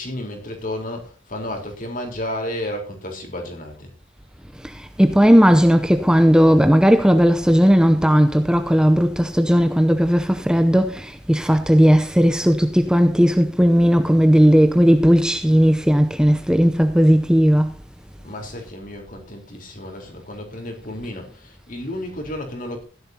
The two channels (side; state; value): both; normal; correlation 0.97